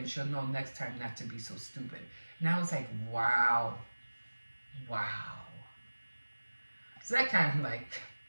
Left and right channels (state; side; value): inverted; both; correlation -1.00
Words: she'll know next time not to be so stupid. And I was like, wow. So that kind of like,